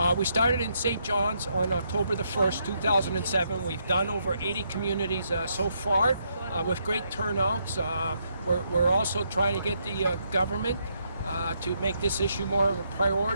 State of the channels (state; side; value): inverted; both; correlation -0.76